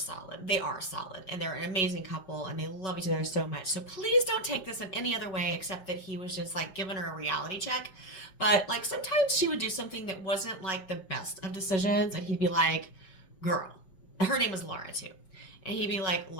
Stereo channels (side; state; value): right; late; 5.3 ms